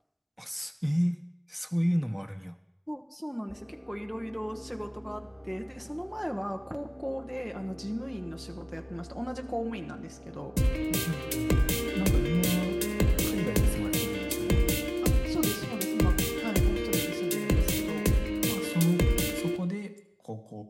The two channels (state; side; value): identical; both; correlation 1.00